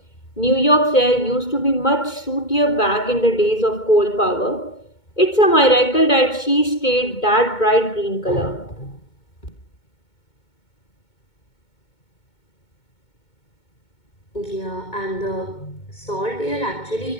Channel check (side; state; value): right; late; 2.2 ms